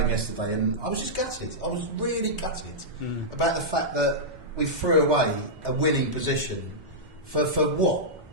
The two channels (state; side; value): normal; both; correlation -0.10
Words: yesterday, and I was just gutted. I was really gutted about the fact that we threw away a winning position for what?